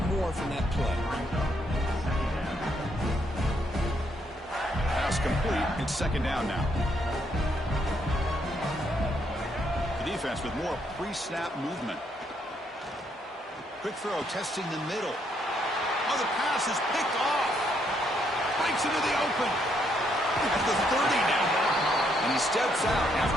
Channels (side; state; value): both; normal; correlation 0.73